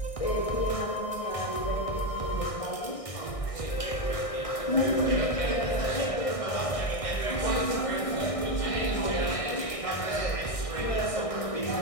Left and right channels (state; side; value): late; right; 1.6 ms